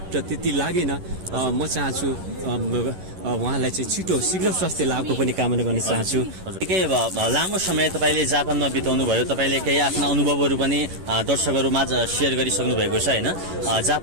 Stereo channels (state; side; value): late; left; 11 ms